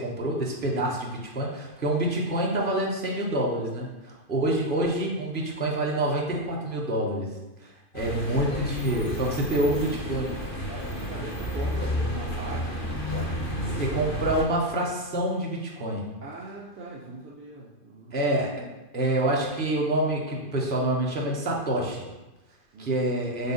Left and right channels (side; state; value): right; late; 2.5 ms